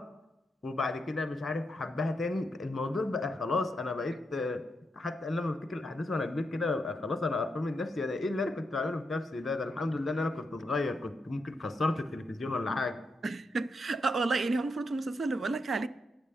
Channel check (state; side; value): normal; both; correlation 0.83